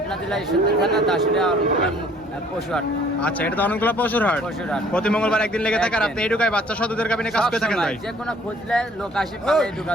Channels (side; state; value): both; normal; correlation 0.57